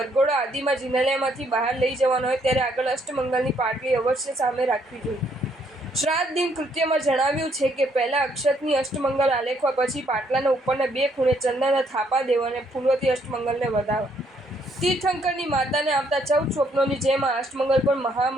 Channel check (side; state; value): both; normal; correlation 0.70